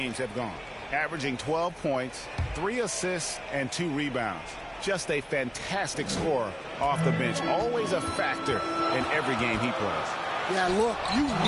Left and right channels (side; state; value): both; identical; correlation 1.00